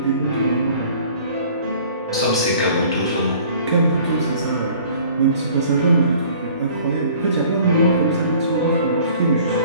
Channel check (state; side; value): inverted; both; correlation -0.52